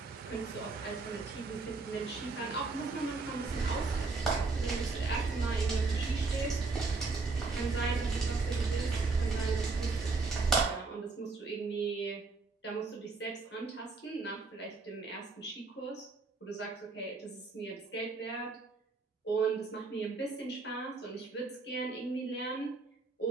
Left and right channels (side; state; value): left; quieter; 3.9 dB